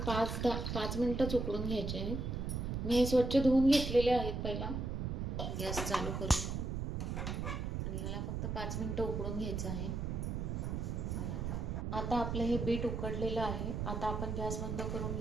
5 मिनिटच उकडून घ्यायचे आहेत। मी हे स्वच्छ धुवून घेतलेले आहेत। पहिला गॅस चालू करूया आणि ह्याला फक्त 5 मिनिटं उकडून घ्यायचं आहे। आता आपलं हे बीट उकडलेलं आहे। आता आपण गॅस बंद करून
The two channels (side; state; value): right; noise; rumble, 2 dB below the sound